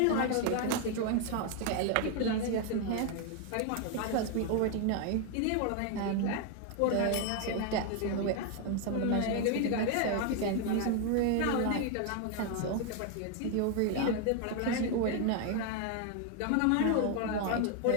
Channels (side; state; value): both; different; correlation 0.01